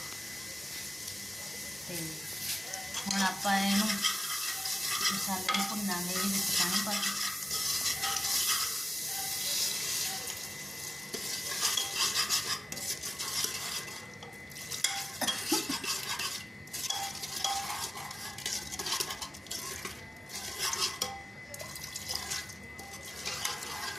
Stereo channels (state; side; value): normal; both; correlation 0.96